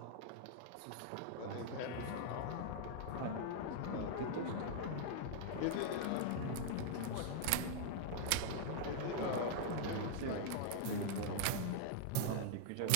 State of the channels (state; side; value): different; both; correlation -0.01